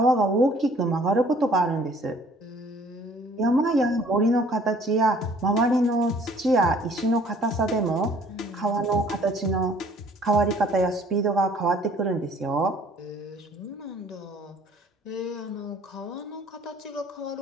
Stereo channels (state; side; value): normal; both; correlation 0.56